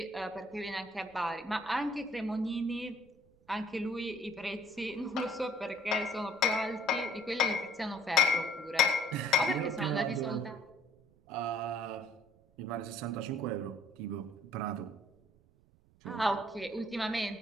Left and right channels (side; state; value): right; noise; rumble, 30 dB below the sound